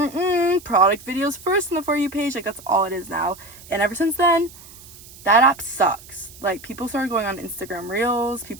videos first on the For You page. Like, that's all it is now. And ever since then, that app sucks. Like, people started going on Instagram Reels.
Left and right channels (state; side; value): noise; right; hiss, 19 dB below the sound